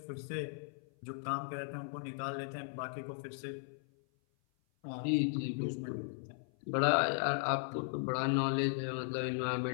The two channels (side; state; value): right; silent; 53 dB below the other